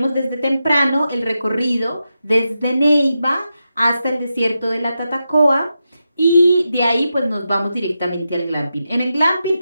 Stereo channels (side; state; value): both; inverted; correlation -0.88